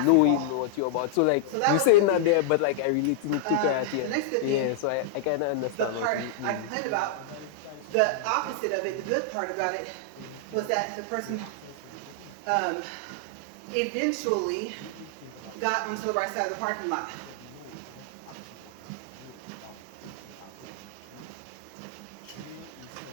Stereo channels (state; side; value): different; both; correlation -0.01